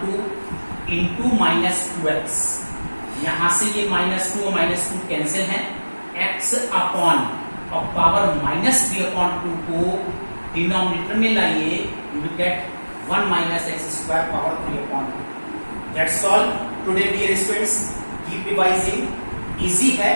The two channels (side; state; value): both; inverted; correlation -1.00